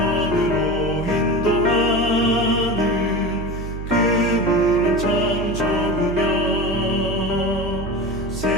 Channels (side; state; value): right; noise; hum, 7 dB below the sound